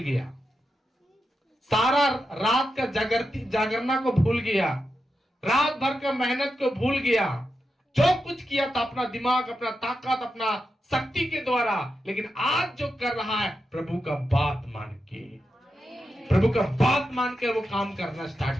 सारा रात का जागरना को भूल गया, रात भर का मेहनत को भूल गया, जो कुछ किया था अपना दिमाग, अपना ताकत, अपना शक्ति के द्वारा। लेकिन आज जो कर रहा है प्रभु का बात मान के, प्रभु का बात मान के वो काम करना स्टार्ट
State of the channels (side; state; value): both; normal; correlation 0.88